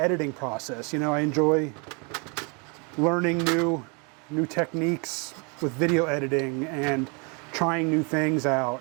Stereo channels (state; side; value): quieter; left; 32.9 dB